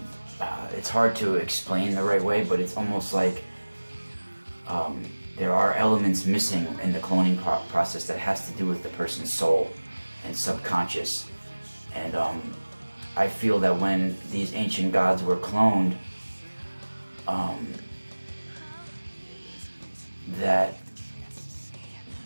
it's hard to explain the right way, but it's almost like there are elements missing in the cloning process that has to do with the person's soul and subconscious. And I feel that when these ancient gods were cloned, that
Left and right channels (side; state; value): both; inverted; correlation -1.00